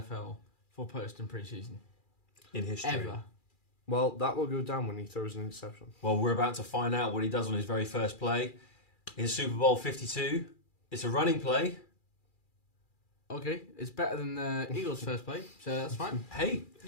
for post and pre-season in history. ever. Well, that will go down when he throws an interception. Well, we're about to find out what he does on his very first play in Super Bowl 52. It's a running play. Okay, it's better than the Eagles' first play, so that's fine. Hey,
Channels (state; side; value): late; right; 2.4 ms